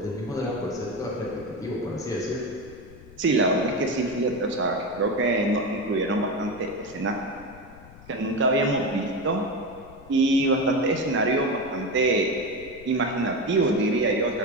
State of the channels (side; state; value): left; noise; rumble, 20 dB below the sound